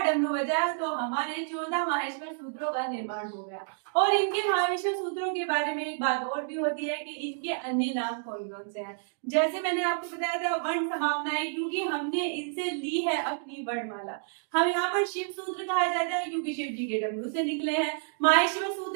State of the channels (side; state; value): left; silent; digital silence